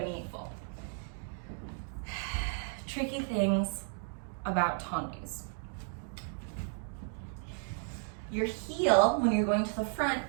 Tricky things about tendus. Your heel, when you're going to the front,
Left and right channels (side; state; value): left; silent; 55 dB below the other